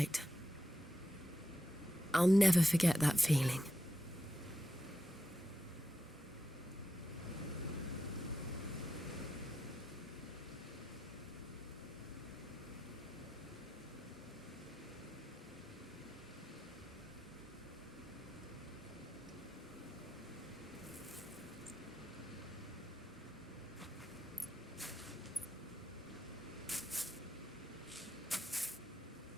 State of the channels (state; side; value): normal; both; correlation 0.87